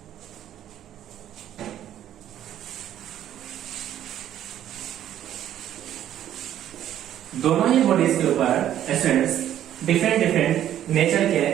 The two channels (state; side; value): quieter; left; 11.4 dB